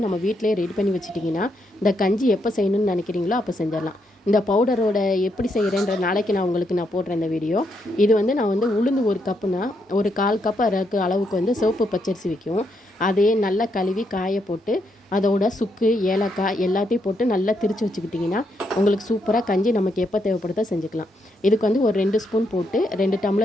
நம்ம வீட்டிலே ரெடி பண்ணி வச்சுட்டிங்கன்னா இந்த கஞ்சி எப்போ செய்யணும்னு நினைக்கிறீங்களோ அப்போ செஞ்சிடலாம். இந்த பவுடரோட எப்படி செய்கிறேன்ற நாளைக்கு நான் போடுறேன் இந்த வீடியோ. இது வந்து நான் வந்து உளுந்து ஒரு கப்புனா ஒரு 1/4 கப் அளவுக்கு வந்து சிவப்பு பச்சரிசி வைக்கும். அதே நல்லா கழுவி காய போட்டு அதோட சுக்கு ஏலக்காய் எல்லாத்தையும் போட்டு நல்லா திரித்து வச்சுக்கிட்டிங்கன்னா உங்களுக்கு சூப்பராக கஞ்சி நமக்கு எப்போ தேவைப்படுதோ செஞ்சுக்கலாம். இதுக்கு வந்து ஒரு 2 ஸ்பூன் போட்டு 2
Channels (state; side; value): normal; both; correlation 0.78